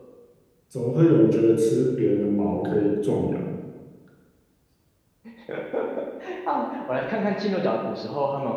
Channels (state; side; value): identical; both; correlation 1.00